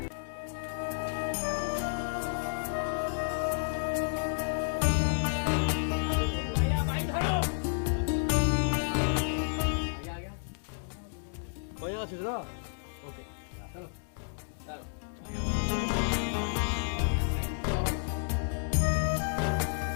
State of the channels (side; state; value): right; silent; digital silence